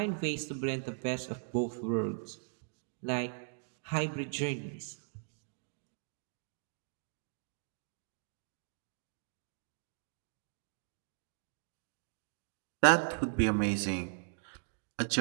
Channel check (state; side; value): silent; left; digital silence